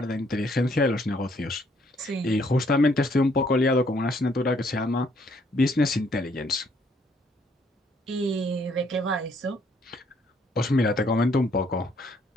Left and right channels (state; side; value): normal; both; correlation 0.67